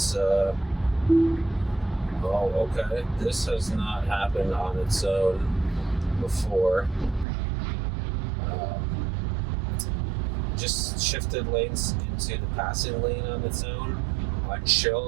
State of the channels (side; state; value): left; drops out; at 7.2 s